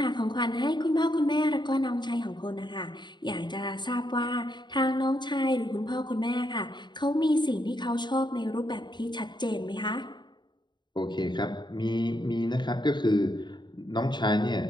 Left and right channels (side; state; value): right; late; 0.22 ms